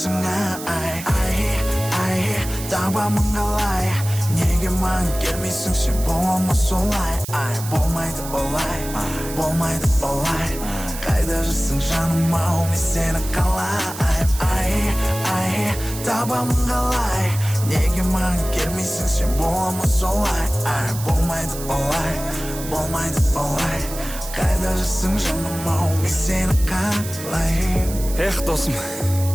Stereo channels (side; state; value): right; noise; hiss, 11 dB below the sound